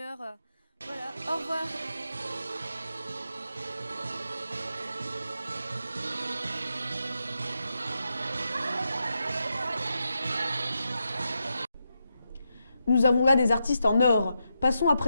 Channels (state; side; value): inverted; both; correlation -0.85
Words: Voilà, au revoir. Nous avons là des artistes en or. Passons à